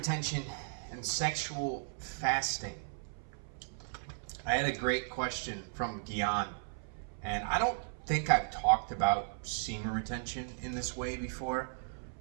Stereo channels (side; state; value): left; silent; 54 dB below the other